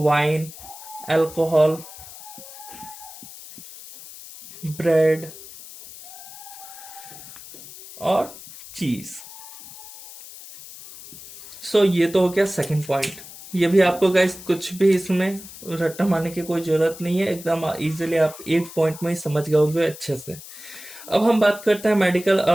अल्कोहल, ब्रेड और चीज। सो ये तो हो गया सेकंड पॉइंट। ये भी आपको गाइस कुछ भी इसमें रट्टा मारने की कोई जरूरत नहीं है, एकदम इजीली आप एक पॉइंट में ही समझ गए होंगे अच्छे से। अब हम बात करते हैं मेडिकल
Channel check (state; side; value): noise; left; hiss, 16 dB below the sound